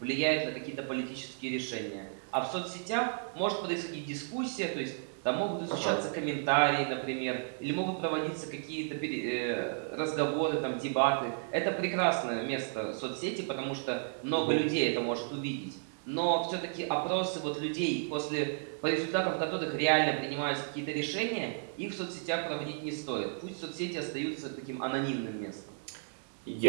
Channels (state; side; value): silent; left; digital silence